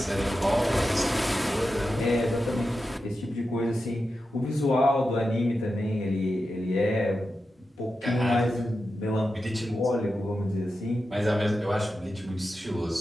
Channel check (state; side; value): normal; both; correlation 0.90